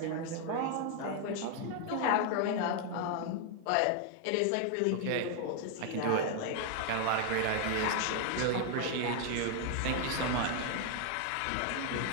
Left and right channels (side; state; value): both; different; correlation 0.00